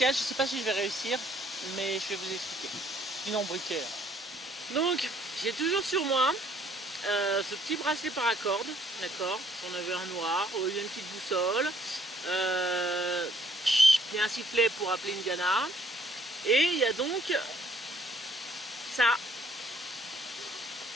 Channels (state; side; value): normal; both; correlation 0.63